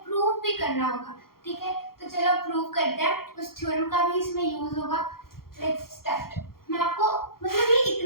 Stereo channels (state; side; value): late; right; 0.93 ms